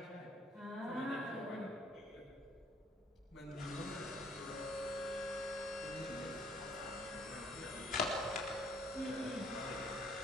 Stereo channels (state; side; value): normal; both; correlation 0.61